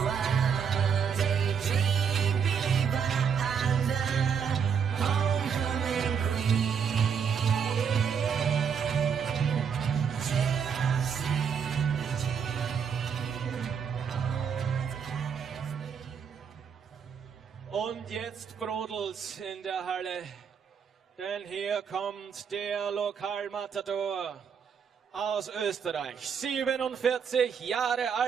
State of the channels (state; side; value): quieter; left; 6.9 dB